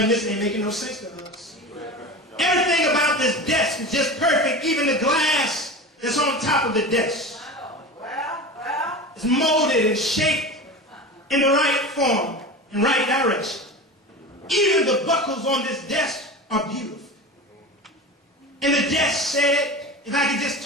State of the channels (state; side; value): normal; both; correlation 0.30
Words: this ain't making no sense to us. Everything about this desk is just perfect. Even the glass that's on top of the desk. It's molded and shaped in the right form and right direction. Even the buckles on this desk are beautiful. And the desk said, if I could just